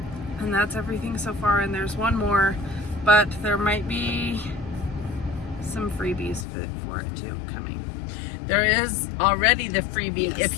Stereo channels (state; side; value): drops out; right; at 6.5 s